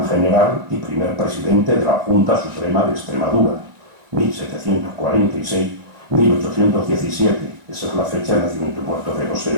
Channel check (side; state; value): left; late; 1.9 ms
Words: general y primer presidente de la Junta Suprema de Extremadura, 1746-1817, esa es la fecha de nacimiento y muerto de